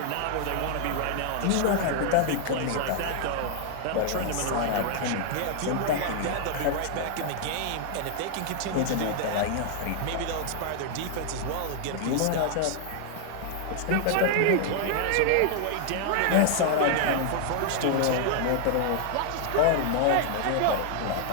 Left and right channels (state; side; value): different; both; correlation 0.00